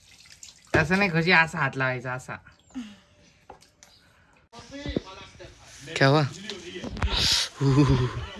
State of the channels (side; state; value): both; identical; correlation 1.00